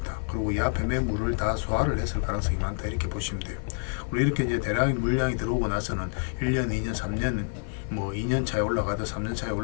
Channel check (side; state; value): right; silent; digital silence